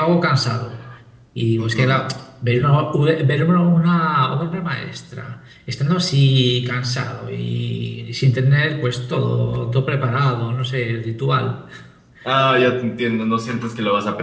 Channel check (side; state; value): both; identical; correlation 1.00